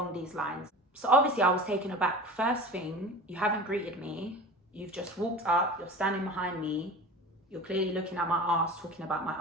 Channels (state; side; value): normal; both; correlation 0.36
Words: these lines. So obviously I was taken aback. First thing, you haven't greeted me. You've just walked up, you're standing behind me, you're clearly looking at my ass, talking about my